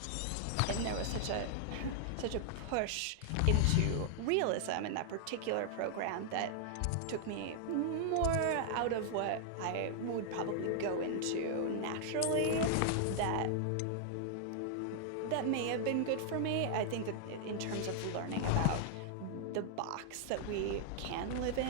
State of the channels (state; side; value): different; both; correlation -0.01